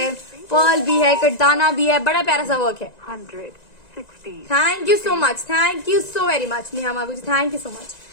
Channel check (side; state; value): right; late; 1.9 ms